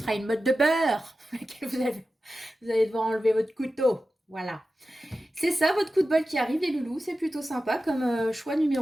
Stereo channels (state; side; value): normal; both; correlation 0.93